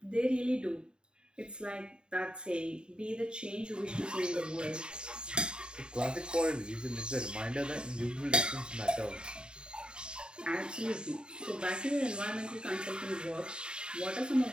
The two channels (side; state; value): left; late; 0.049 ms